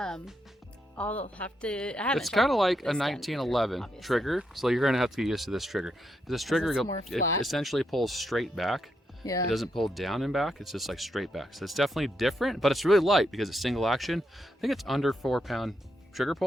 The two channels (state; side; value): normal; both; correlation 0.81